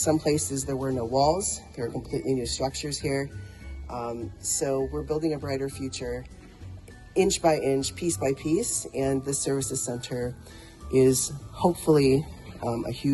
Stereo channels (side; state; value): both; identical; correlation 1.00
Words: places there were no walls. There are completely new structures here. So we're building a brighter future, inch by inch, piece by piece, and the Services Center is hopefully a